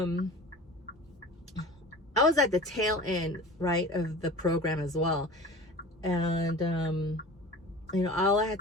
I was at the tail end, right, of the program as well. And all I had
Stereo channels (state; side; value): normal; both; correlation 0.38